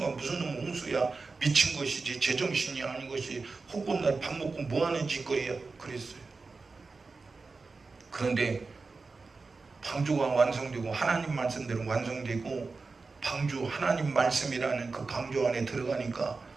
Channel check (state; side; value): quieter; left; 4.1 dB